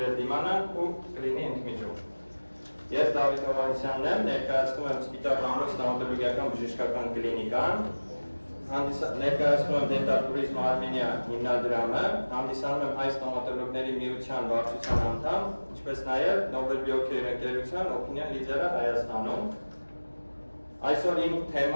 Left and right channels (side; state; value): both; inverted; correlation -1.00